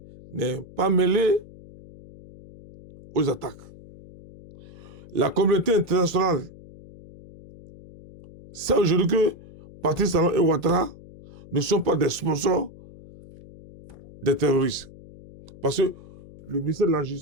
n'est pas mêlé aux attaques. La communauté internationale sait aujourd'hui que Patrice Talon et Ouattara ne sont pas des sponsors des terroristes. Parce que le ministère de la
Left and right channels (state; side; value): noise; left; hum, 20 dB below the sound